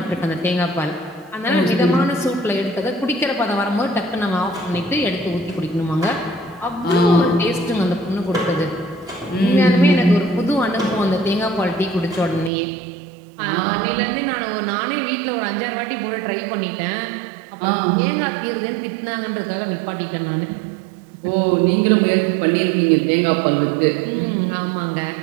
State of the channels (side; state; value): left; drops out; at 12.5 s